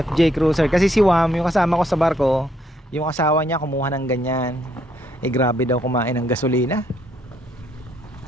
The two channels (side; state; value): both; normal; correlation 0.71